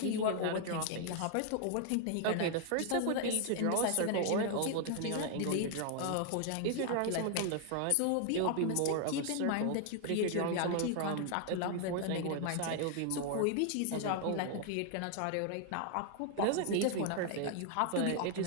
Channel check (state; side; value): different; both; correlation 0.00